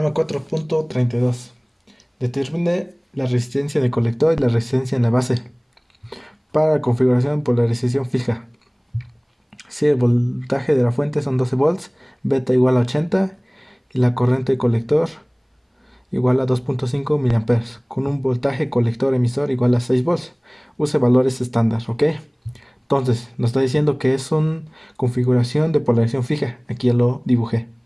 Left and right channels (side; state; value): both; identical; correlation 1.00